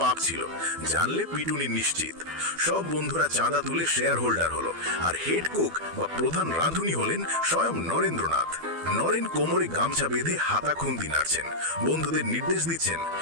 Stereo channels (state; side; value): late; left; 12 ms